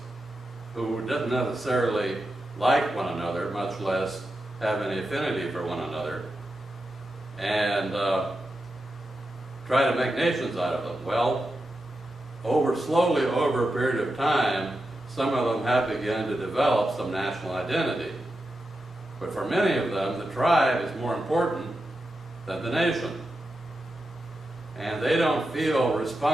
who didn't necessarily like one another, much less have any affinity for one another, and try to make nations out of them. Well, slowly over a period of time, some of them have begun to develop some national identity. But for many of them, the tribe is more important than the nation. And they don't feel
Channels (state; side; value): normal; both; correlation 0.89